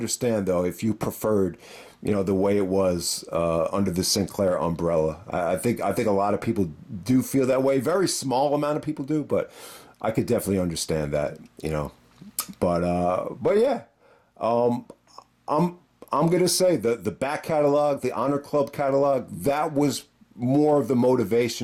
though if you preferred the way it was under the Sinclair umbrella. I think a lot of people do feel that way. Very small amount of people do, but I could definitely understand that, but yeah, I'm gonna say the back catalog, the Honor Club catalog, that was more of the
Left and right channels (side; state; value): both; identical; correlation 1.00